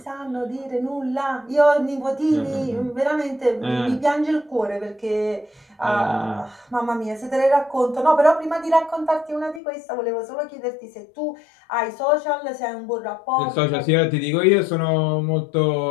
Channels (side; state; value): right; drops out; at 9.6 s